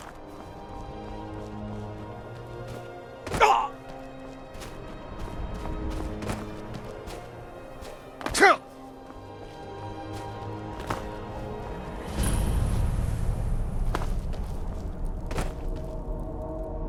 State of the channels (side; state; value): both; identical; correlation 1.00